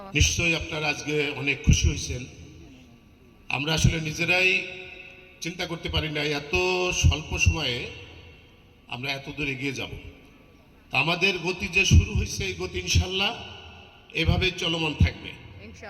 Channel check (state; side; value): identical; both; correlation 1.00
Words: নিশ্চয়ই আপনারা আজকে অনেক খুশি হয়েছেন। আমরা আসলে নিজেরাই চিন্তা করতে পারি না এত স্বল্প সময়ে আমরা এত দূর এগিয়ে যাব। আমাদের গতি যে শুরু হয়েছে, এই গতি ইনশাল্লাহ এভাবে চলমান থাকবে